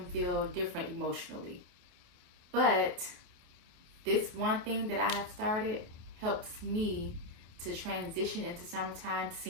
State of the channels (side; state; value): left; late; 28 ms